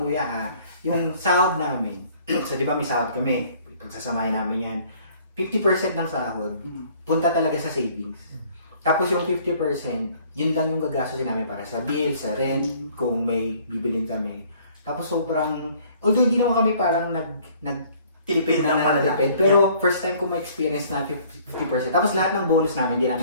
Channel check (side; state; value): both; inverted; correlation -0.57